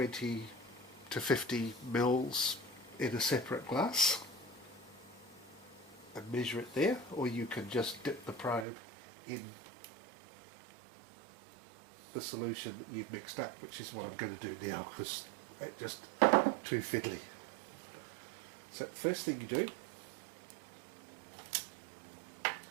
to 50 mils, in a separate glass and measure it there, or you can just dip the probe in the solution that you've mixed up, which is what I'm going to do now because it's just too fiddly. So first thing you do,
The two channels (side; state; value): left; drops out; at 8.7 s